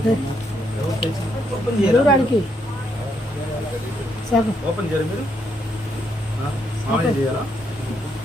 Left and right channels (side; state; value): both; normal; correlation 0.75